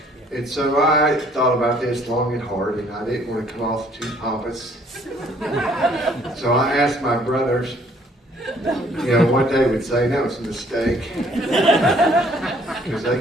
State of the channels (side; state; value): both; normal; correlation 0.61